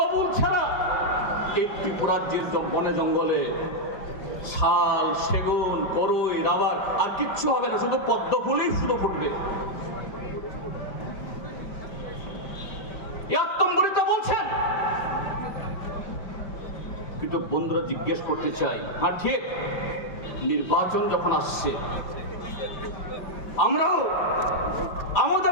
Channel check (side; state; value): right; late; 5.0 ms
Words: ছাড়া এই ত্রিপুরাজ্যের বনে জঙ্গলে শাল, সেগুন, করই, রাবার আর কিচ্ছু হবে না, শুধু পদ্মফুলই শুধু ফুটবে। আত্মম্বরিত বলছেন। কিন্তু বন্ধুরা জিজ্ঞেস করতে চাই, হ্যাঁ ঠিক, নির্বাচন যখন আসছে আমরাও